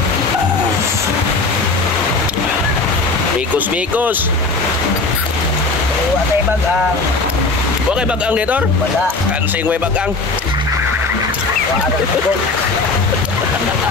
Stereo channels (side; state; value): right; quieter; 3.6 dB